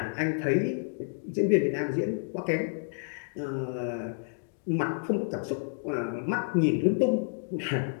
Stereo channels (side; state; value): right; silent; digital silence